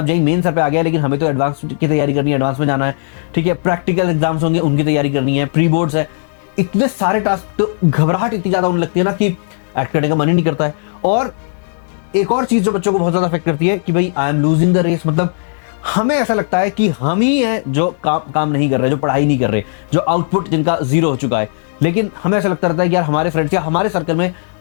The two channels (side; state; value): right; silent; digital silence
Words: जेईई मेन सर पे आ गया है लेकिन हमें तो एडवांस की तैयारी करनी है, एडवांस में जाना है। ठीक है, प्रैक्टिकल एग्जाम्स होंगे उनकी तैयारी करनी है, प्री बोर्ड्स है, इतने सारे टास्क। तो घबराहट इतनी ज्यादा होने लगती है ना कि एक्ट करने का मन ही नहीं करता है। और एक और चीज जो बच्चों को बहुत ज्यादा अफेक्ट करती है कि भाई I am losing the race. मतलब हमें ऐसा लगता है कि हम ही हैं जो काम नहीं कर रहे, जो पढ़ाई नहीं कर रहे, जो आउटपुट जिनका जीरो हो चुका है। लेकिन हमें ऐसा लगता रहता है कि यार हमारे फ्रेंड्स या हमारे सर्कल में